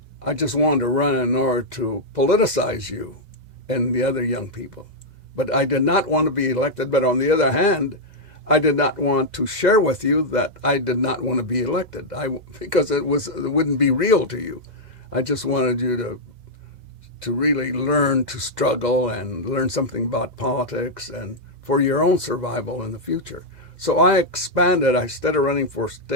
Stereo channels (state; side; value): late; left; 2.0 ms